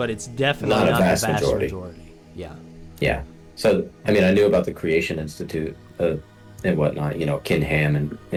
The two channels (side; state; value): both; identical; correlation 1.00